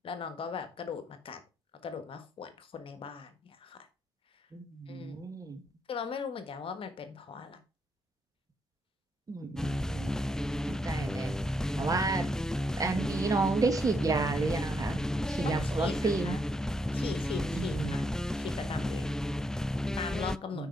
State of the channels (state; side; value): normal; both; correlation 0.77